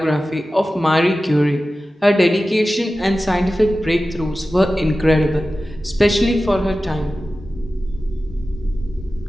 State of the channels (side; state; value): both; normal; correlation 0.95